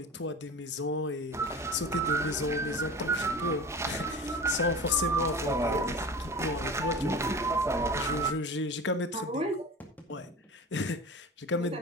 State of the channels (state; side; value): normal; both; correlation 0.34